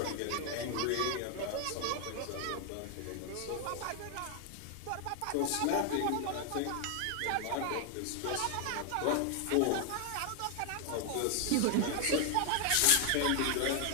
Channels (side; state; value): both; different; correlation 0.00